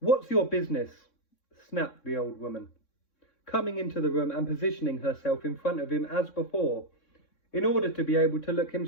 your business?" snapped the old woman, coming into the room and positioning herself in front of him as before, in order to be able to look him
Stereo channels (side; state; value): right; late; 3.6 ms